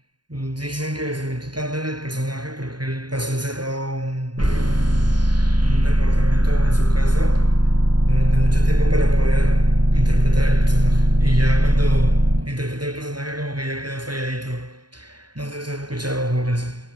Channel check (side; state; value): left; late; 0.70 ms